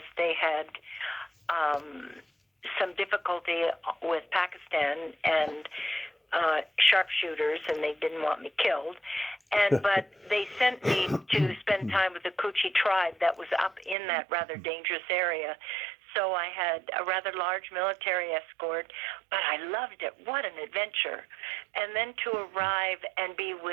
they had some difficulty with Pakistan and sharpshooters, and they didn't want me killed. But they sent me to spend time with the Koochie tribe that was up in that rather dangerous area. So I had a rather large military escort, but I loved it. What an adventure. And then to arrive and be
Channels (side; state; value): left; drops out; at 14.0 s